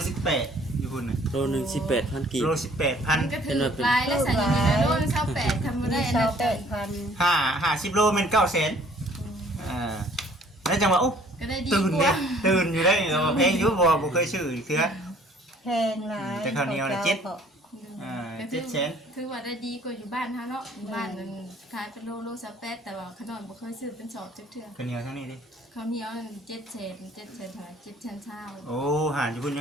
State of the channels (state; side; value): normal; both; correlation 0.57